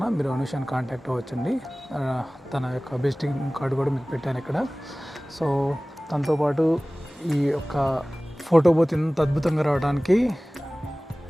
మీరు అనుషాన్ని కాంటాక్ట్ అవ్వచ్చండి. తన యొక్క విజిటింగ్ కార్డు కూడా మీకు పెట్టాను ఇక్కడ. సో తనతో పాటు ఈ యొక్క ఫోటో బూత్ ఇంత అద్భుతంగా రావడానికి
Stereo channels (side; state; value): both; normal; correlation 0.98